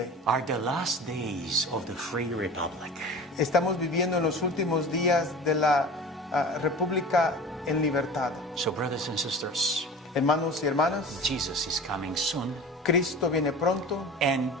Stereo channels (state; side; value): normal; both; correlation 0.36